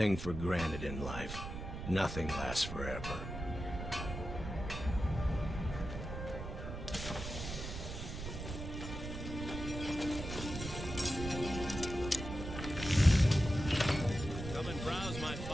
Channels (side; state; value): right; noise; rumble, 7 dB below the sound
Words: for granted in life. Nothing lasts forever. Come and browse my